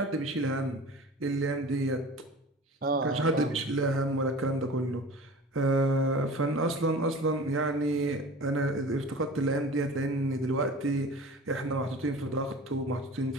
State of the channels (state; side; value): normal; both; correlation 0.39